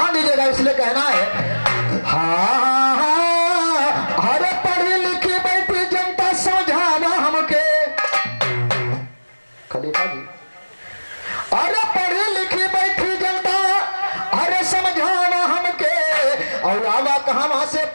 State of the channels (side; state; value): both; inverted; correlation -1.00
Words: दीजिएगा इसलिए कहना है हाँ अरे पढ़ी लिखी बैठी जनता समझावा हमके। खलीफा जी अरे पढ़ी लिखी बैठी जनता अरे समझावा हमके। और आवा कहां से